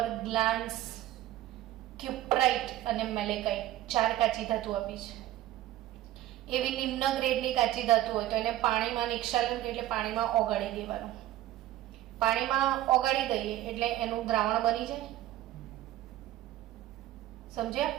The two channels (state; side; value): quieter; left; 14.4 dB